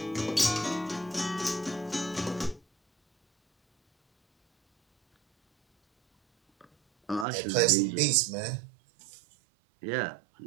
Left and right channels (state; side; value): drops out; left; at 7.2 s